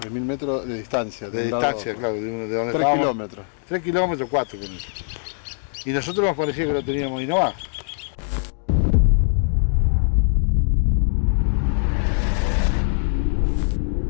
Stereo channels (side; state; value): right; silent; 64 dB below the other